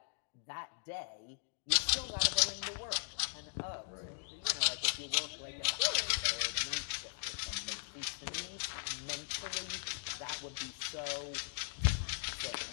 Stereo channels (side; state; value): right; silent; digital silence